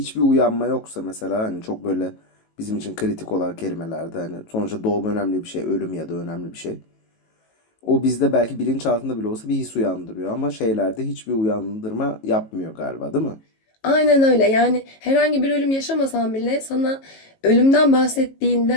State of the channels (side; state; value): right; late; 18 ms